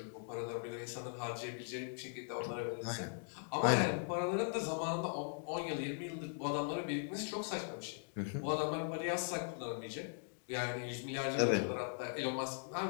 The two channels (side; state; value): right; silent; digital silence